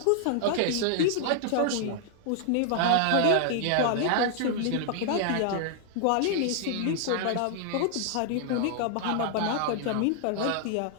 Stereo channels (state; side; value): different; both; correlation 0.00